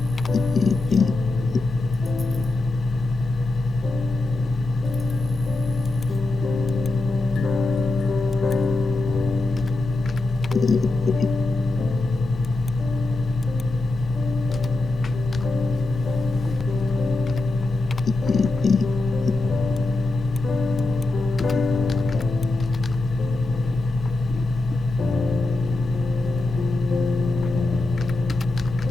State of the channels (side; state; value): right; quieter; 3.0 dB